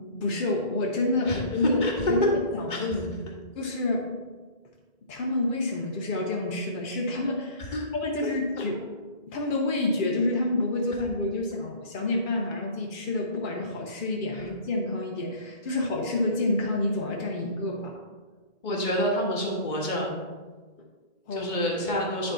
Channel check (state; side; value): late; right; 2.2 ms